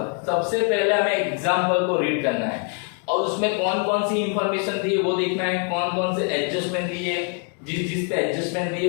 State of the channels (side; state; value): right; quieter; 37.4 dB